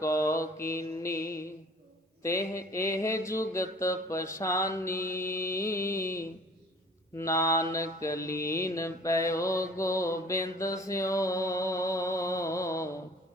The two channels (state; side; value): normal; both; correlation 0.49